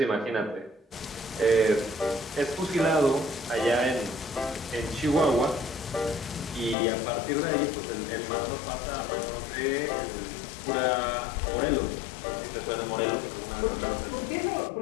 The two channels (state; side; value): drops out; right; at 6.8 s